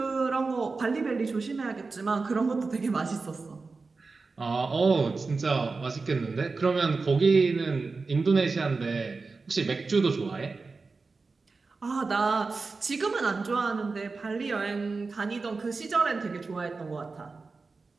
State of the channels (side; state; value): left; quieter; 4.1 dB